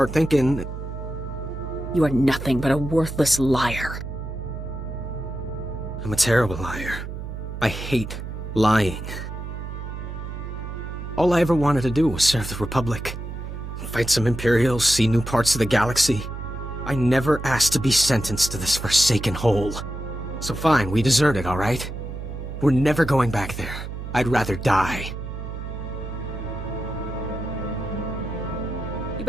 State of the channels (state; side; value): noise; right; hum, 8 dB below the sound